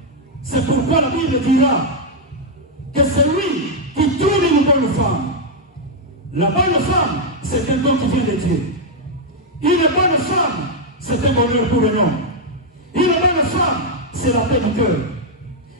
C'est pourquoi la Bible dira que celui qui trouve une bonne femme, la bonne femme, c'est un don qui vient de Dieu. Une bonne femme, c'est un bonheur pour un homme. Une bonne femme, c'est la paix du cœur.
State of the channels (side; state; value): both; normal; correlation -0.01